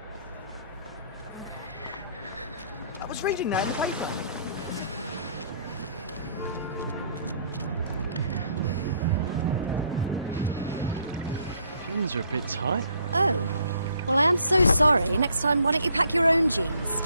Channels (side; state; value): both; inverted; correlation -0.65